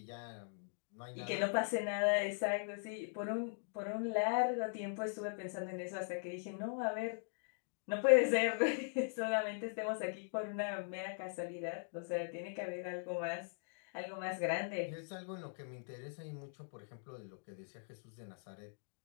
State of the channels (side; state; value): right; silent; digital silence